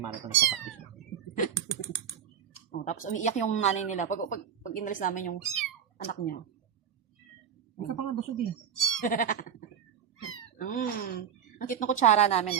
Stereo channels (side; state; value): left; quieter; 8.5 dB